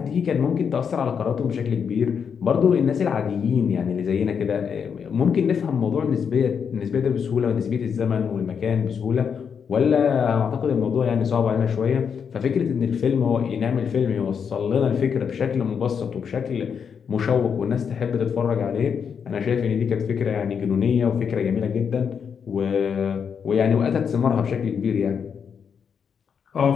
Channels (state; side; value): quieter; right; 6.9 dB